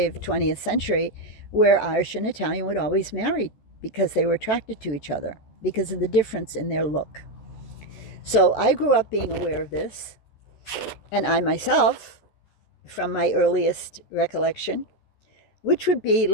of 20th century, where Irish and Italian would always marry because they were attracted to each other because of the difference in their look. So I grew up being aware of this, and I myself, from my earliest recollection, which would be,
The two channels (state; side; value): late; right; 14 ms